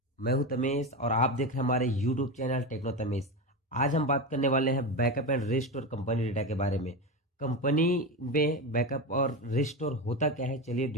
मैं हूं तमेश और आप देख रहे हैं हमारे यूट्यूब चैनल टेक्नो तमेश। आज हम बात करने वाले हैं backup and restore company data के बारे में। कंपनी में बैकअप और रिस्टोर होता क्या है, चलिए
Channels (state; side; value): normal; both; correlation 0.19